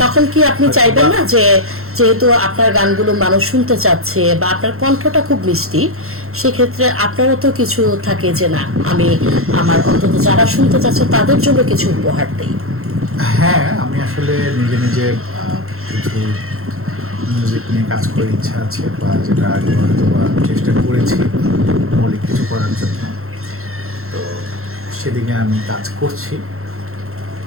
তখন কি আপনি চাইবেন না যে যেহেতু আপনার গানগুলো মানুষ শুনতে চাচ্ছে বা আপনার কণ্ঠটা খুব মিষ্টি, সেক্ষেত্রে আপনারও তো কিছু থাকে যে না, আমি আমার অন্তত যারা শুনতে চাচ্ছে তাদের জন্য কিছু উপহার দিই? হ্যাঁ, আমি আসলে নিজে নিজে কিছু মিউজিক নিয়ে কাজ করার ইচ্ছা আছে, বা যেটা আগে হয়তো বা চেষ্টা করেছি মৌলিক কিছু করার জন্য। তো সেদিকে আমি কাজ করছি,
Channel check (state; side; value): late; left; 0.62 ms